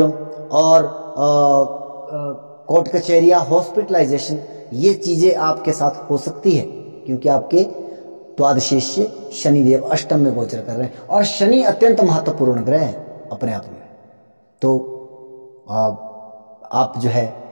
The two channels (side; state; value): both; inverted; correlation -1.00